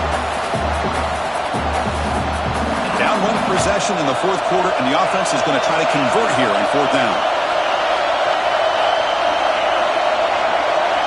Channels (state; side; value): identical; both; correlation 1.00